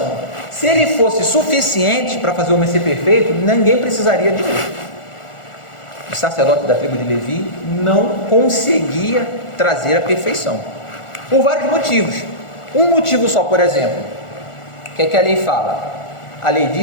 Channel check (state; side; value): late; right; 1.4 ms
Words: Se ele fosse suficiente para fazer o homem ser perfeito, ninguém precisaria de outro. O sacerdote da tribo de Levi não conseguia trazer a perfeição, por vários motivos. Um motivo só, por exemplo, o que é que a lei fala? A lei